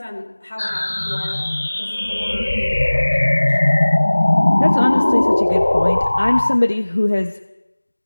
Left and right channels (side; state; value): both; inverted; correlation -1.00